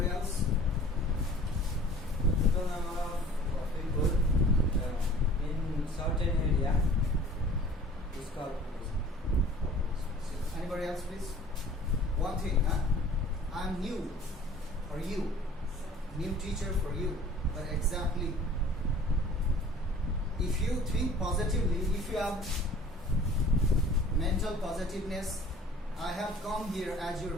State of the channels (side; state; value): both; normal; correlation 0.48